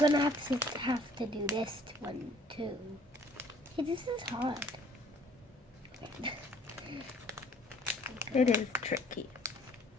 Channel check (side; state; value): both; normal; correlation 0.57